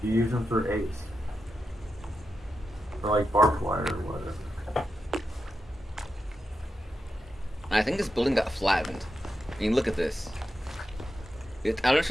You use them for ace. For like barbed wire or whatever. I think this building got flattened. I mean, look at this. I don't know if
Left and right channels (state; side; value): normal; both; correlation 0.88